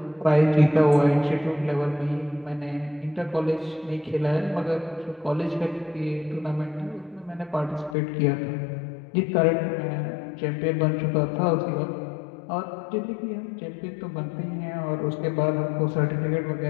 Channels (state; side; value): drops out; right; at 8.0 s